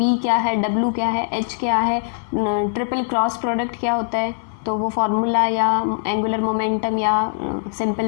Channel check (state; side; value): silent; right; 58 dB below the other